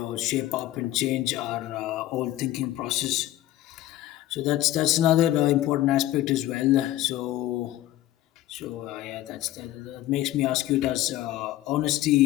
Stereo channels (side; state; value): right; quieter; 14.6 dB